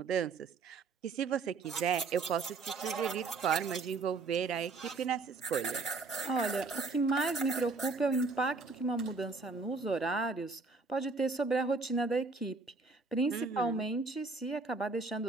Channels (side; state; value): left; quieter; 4.1 dB